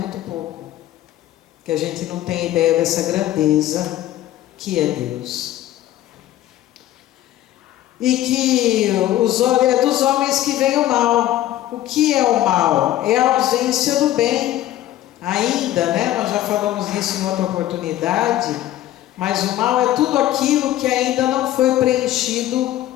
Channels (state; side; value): quieter; right; 13.8 dB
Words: Muito pouco. Que a gente não tem ideia dessa grandeza que é Deus. E que é dos homens que vem o mal. O que é o mal? É a ausência do bem. Ainda, né? Nós já falamos disso em outra oportunidade. Mas o mal é tudo aquilo que ainda não foi preenchido